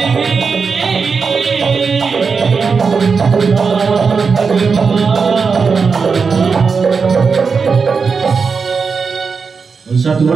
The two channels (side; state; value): left; quieter; 5.2 dB